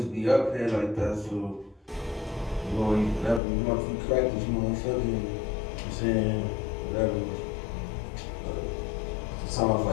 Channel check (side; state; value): right; drops out; at 3.4 s